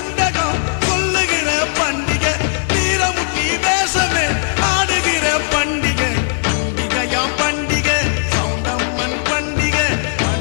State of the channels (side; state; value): right; silent; 68 dB below the other